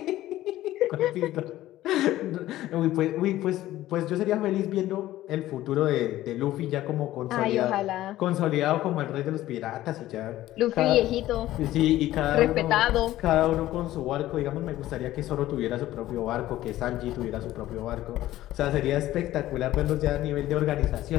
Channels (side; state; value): right; quieter; 14.8 dB